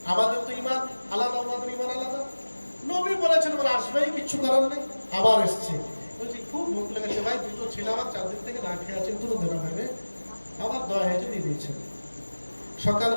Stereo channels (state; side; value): inverted; both; correlation -1.00